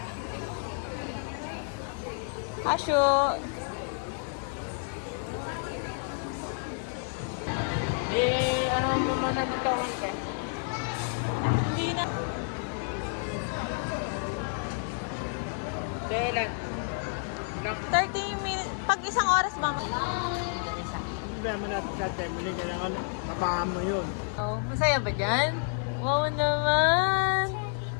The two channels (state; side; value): silent; right; 55 dB below the other